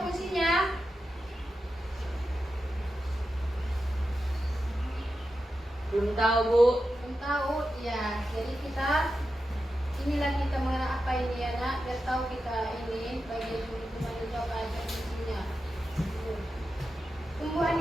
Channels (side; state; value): both; normal; correlation 0.90